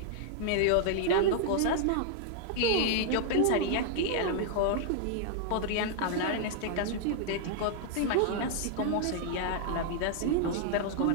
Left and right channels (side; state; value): both; different; correlation -0.01